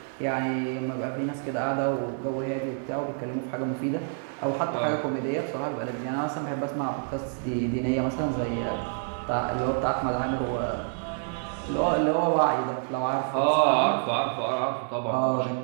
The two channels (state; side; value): silent; left; 60 dB below the other